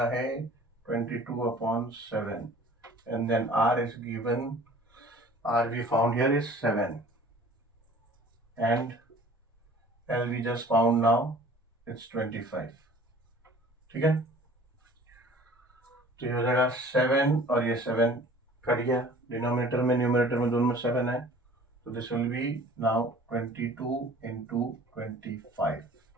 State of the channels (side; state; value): both; normal; correlation 0.48